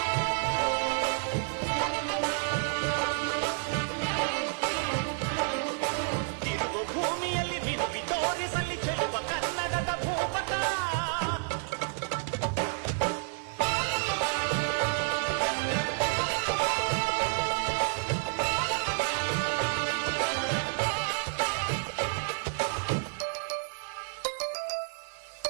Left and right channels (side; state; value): left; silent; 58 dB below the other